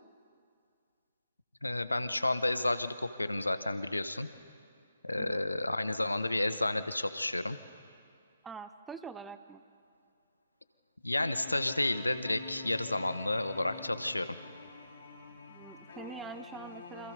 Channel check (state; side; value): inverted; both; correlation -0.93